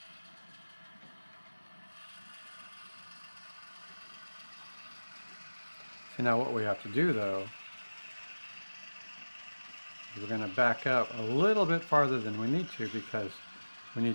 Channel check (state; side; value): inverted; both; correlation -1.00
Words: And now what we have to do though, is we're going to back up a little bit farther than we need to, because we